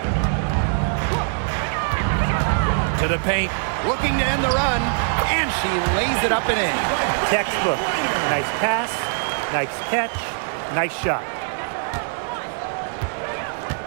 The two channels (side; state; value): left; silent; digital silence